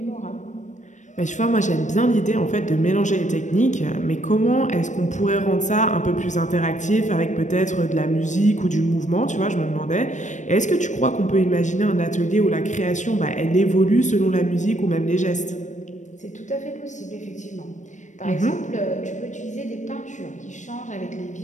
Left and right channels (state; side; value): late; right; 0.35 ms